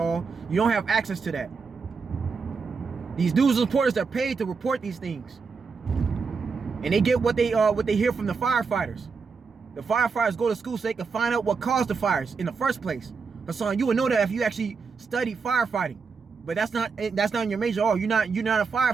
You don't have access to that. These news reporters are paid to report these things. And they get what they hear from the firefighters. The firefighters go to school so they can find out what caused the fires in the first place. Hassan, you would know that if you actually studied firefighting. But that's not in your major. Oh, you're not a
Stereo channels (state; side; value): quieter; left; 5.1 dB